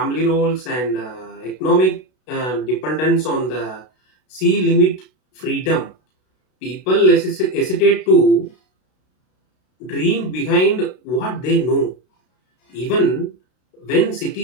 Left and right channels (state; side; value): late; right; 32 ms